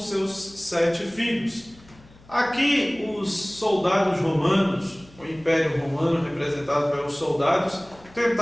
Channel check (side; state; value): left; noise; hum, 25 dB below the sound